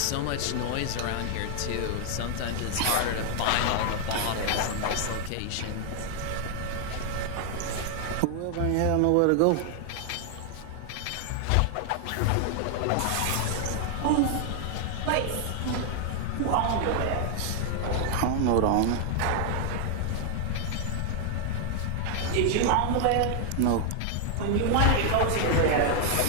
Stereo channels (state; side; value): different; both; correlation 0.00